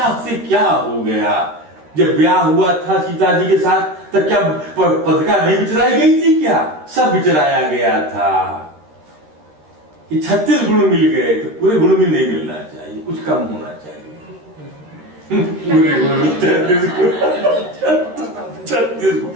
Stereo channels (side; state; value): left; late; 13 ms